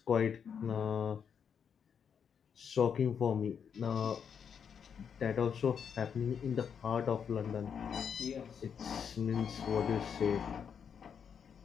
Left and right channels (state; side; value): quieter; right; 7.3 dB